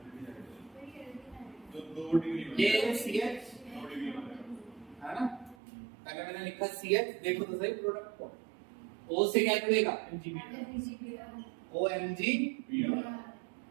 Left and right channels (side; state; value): left; drops out; at 5.6 s